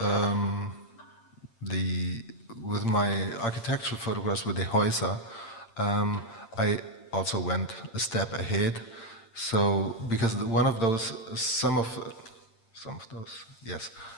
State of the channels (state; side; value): late; right; 8.8 ms